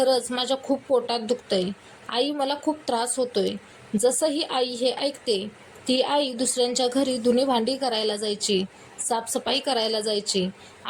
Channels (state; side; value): identical; both; correlation 1.00